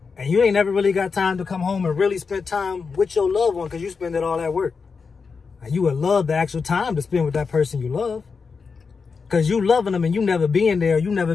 And you ain't never really got time to come home and really spend time with your loved one because you spend it all at work. And you would love the actual time to spend with that person you love. Because you loving them and you never being there, you never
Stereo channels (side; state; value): right; quieter; 5.1 dB